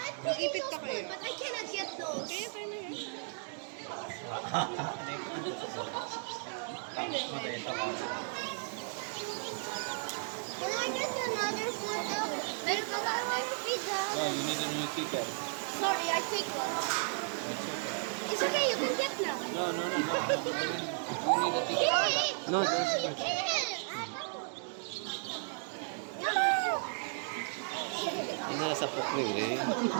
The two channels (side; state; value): left; silent; 55 dB below the other